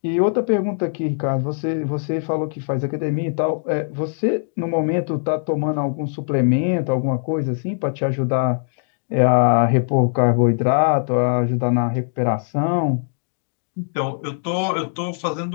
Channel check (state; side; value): silent; right; digital silence